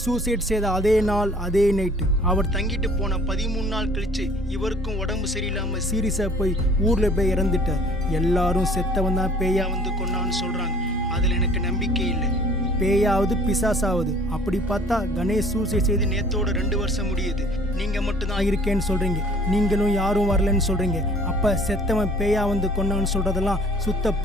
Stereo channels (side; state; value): both; normal; correlation 0.52